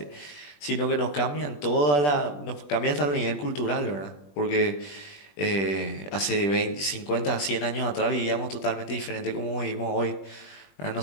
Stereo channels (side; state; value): right; late; 20 ms